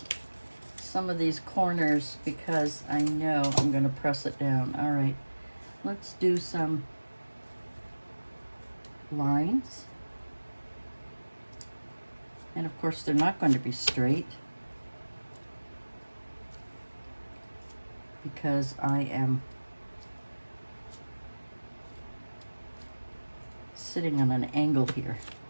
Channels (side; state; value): both; inverted; correlation -1.00